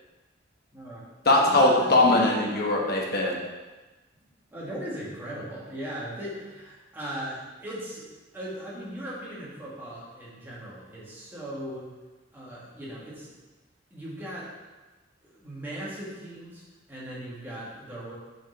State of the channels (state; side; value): normal; both; correlation -0.07